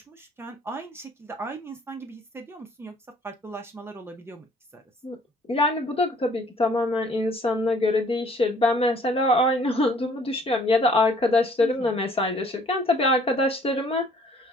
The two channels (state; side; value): normal; both; correlation 0.58